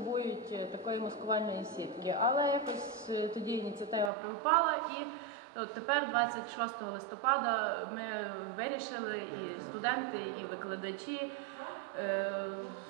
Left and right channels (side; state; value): left; drops out; at 4.1 s